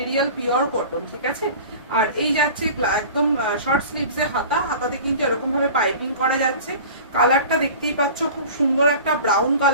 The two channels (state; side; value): inverted; both; correlation -0.39